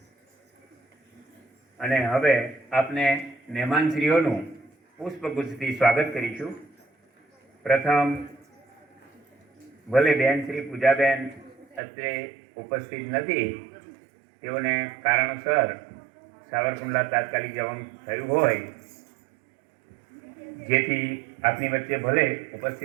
અને હવે આપને મહેમાનશ્રીઓનું પુષ્પગુચ્છથી સ્વાગત કરીશું. પ્રથમ ભલે બેન શ્રી પૂજાબેન અત્રે ઉપસ્થિત નથી, તેઓને કારણોસર સાવરકુંડલા તાત્કાલિક જવાનું થયું હોય, જેથી આપની વચ્ચે ભલે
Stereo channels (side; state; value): left; drops out; at 11.8 s